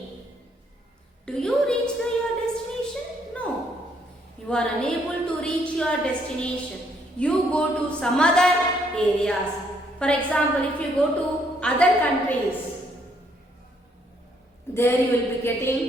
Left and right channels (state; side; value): normal; both; correlation 0.69